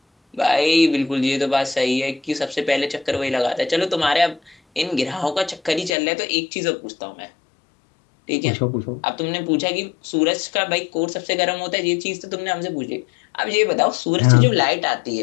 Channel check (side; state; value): right; drops out; at 5.9 s